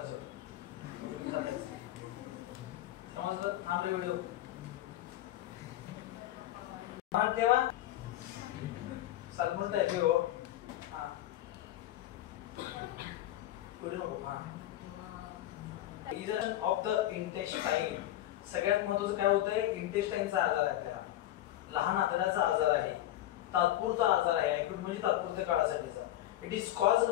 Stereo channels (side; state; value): right; quieter; 14.0 dB